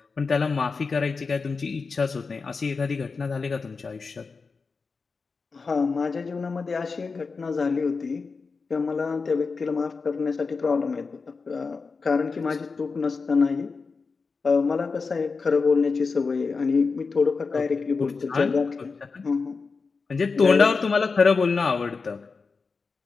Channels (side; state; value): right; quieter; 4.6 dB